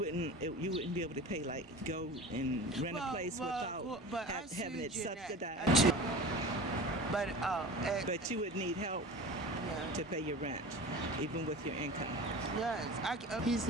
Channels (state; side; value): normal; both; correlation 0.35